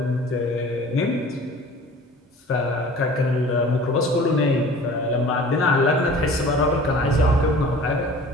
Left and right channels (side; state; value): both; normal; correlation 0.45